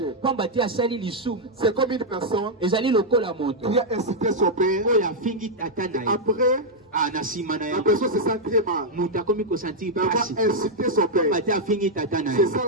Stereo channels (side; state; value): both; normal; correlation -0.02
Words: C'est comme une personne qui a incité son père. Après, la personne se sent très mal d'avoir incité son père. C'est ça